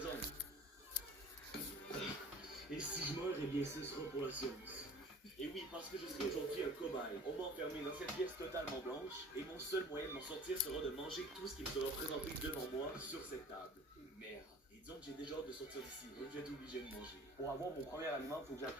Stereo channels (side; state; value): both; normal; correlation 0.45